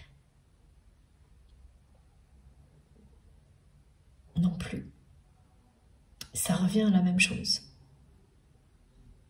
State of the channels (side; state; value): both; identical; correlation 1.00